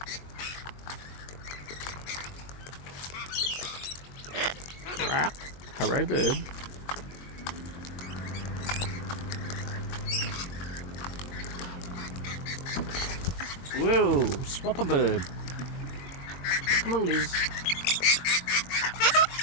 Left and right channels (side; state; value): right; late; 22 ms